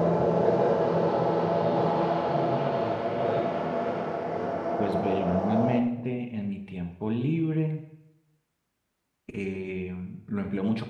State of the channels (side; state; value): both; identical; correlation 1.00